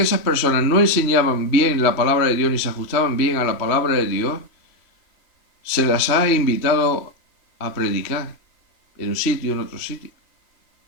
esas personas no enseñaban bien la palabra de Dios ni se ajustaban bien a la palabra de Dios, se las ha invitado a predicar en un sitio, en otro sitio.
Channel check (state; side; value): late; right; 3.0 ms